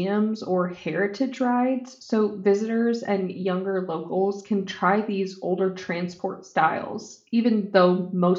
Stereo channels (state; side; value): identical; both; correlation 1.00